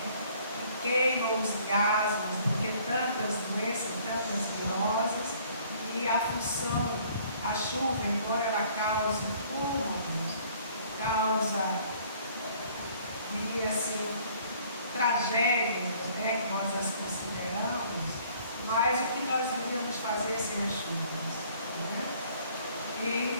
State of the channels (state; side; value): inverted; both; correlation -0.57